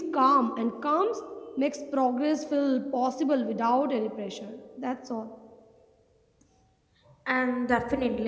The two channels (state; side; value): identical; both; correlation 1.00